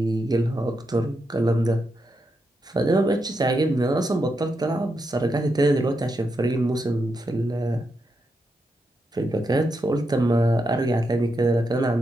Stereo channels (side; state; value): both; normal; correlation 0.84